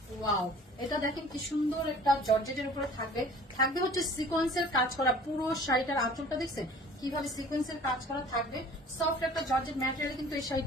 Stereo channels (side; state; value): both; normal; correlation 0.48